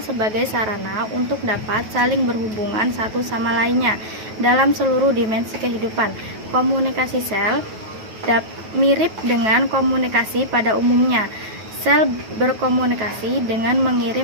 sebagai sarana untuk dapat saling berhubungan satu sama lainnya dalam seluruh dimensi kehidupan. Komunikasi sel mirip dengan komunikasi pada umumnya. Sel berkomunikasi dengan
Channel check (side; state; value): left; late; 9.3 ms